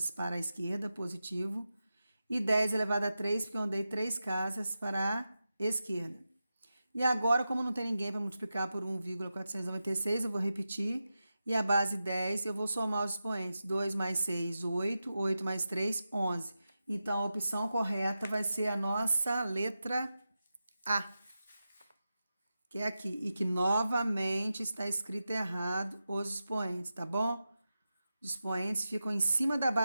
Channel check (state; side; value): inverted; both; correlation -0.91